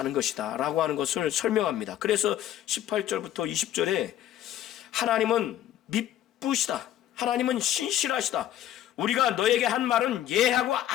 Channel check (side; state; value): right; quieter; 12.0 dB